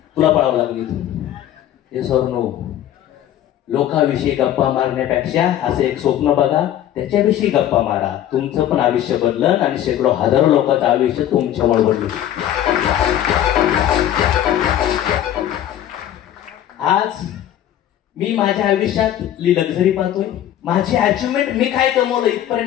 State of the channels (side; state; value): right; quieter; 11.6 dB